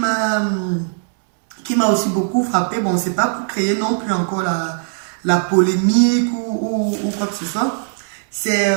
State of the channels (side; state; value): left; silent; digital silence